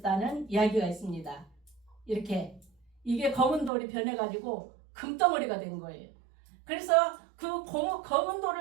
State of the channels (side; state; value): left; drops out; at 3.7 s